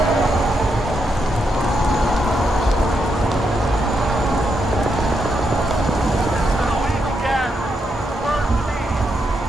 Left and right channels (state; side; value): normal; both; correlation 0.81